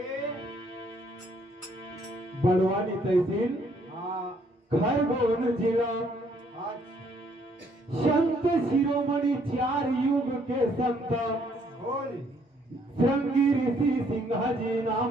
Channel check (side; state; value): both; normal; correlation 0.67